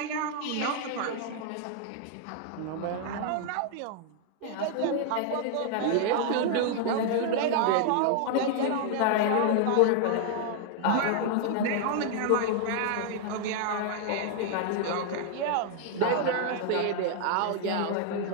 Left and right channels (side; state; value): both; different; correlation 0.00